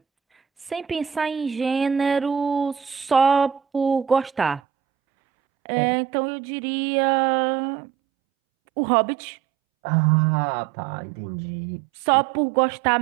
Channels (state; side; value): drops out; left; at 4.6 s